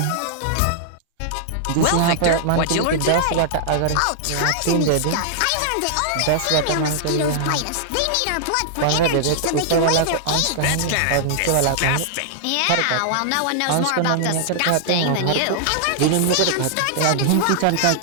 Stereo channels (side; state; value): both; different; correlation -0.01